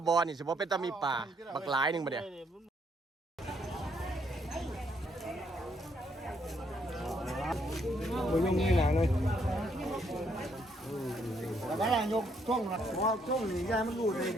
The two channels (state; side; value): normal; both; correlation 0.71